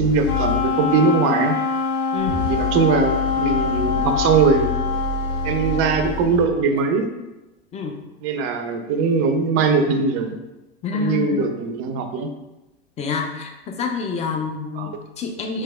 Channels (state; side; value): normal; both; correlation 0.05